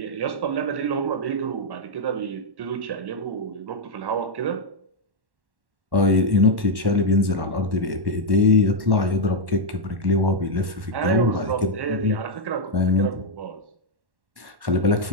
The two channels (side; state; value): left; late; 1.1 ms